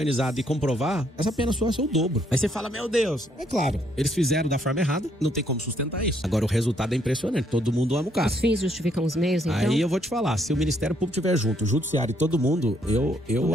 e comprovar, essa pena sua é o dobro. Aí você fala, meu Deus. É claro, eles fizeram da forma errada, não tem como sustentar isso. Agora o resultado é impressionante, todo mundo ama o cara. Os fins justificam os meios, então? Aí eu vou te falar, se o Ministério Público estiver junto, o Judiciário e todo mundo, eu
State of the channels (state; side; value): normal; both; correlation 0.70